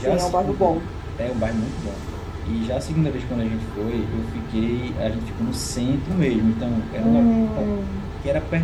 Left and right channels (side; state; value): both; identical; correlation 1.00